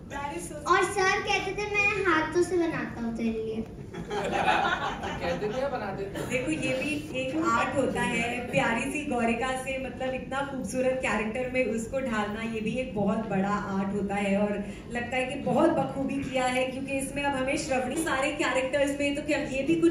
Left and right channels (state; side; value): identical; both; correlation 1.00